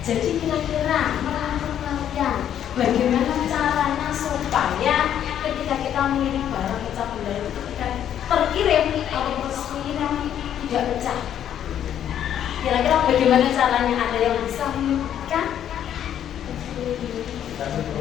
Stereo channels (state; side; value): quieter; right; 10.1 dB